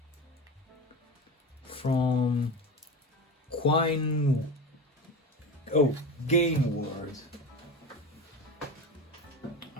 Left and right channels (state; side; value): normal; both; correlation 0.27